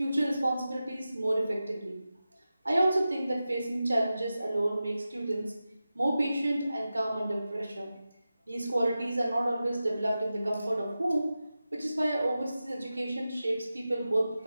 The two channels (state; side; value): inverted; both; correlation -0.93